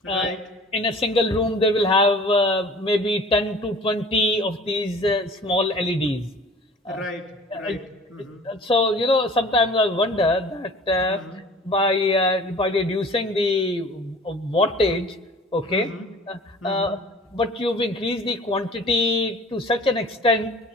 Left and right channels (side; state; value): both; normal; correlation 0.45